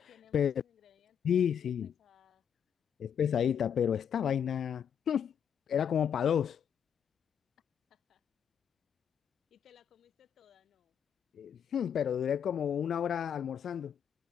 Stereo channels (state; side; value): quieter; right; 8.2 dB